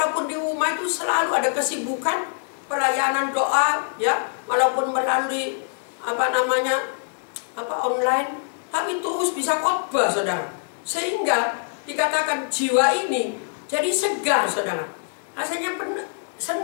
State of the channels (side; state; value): right; silent; digital silence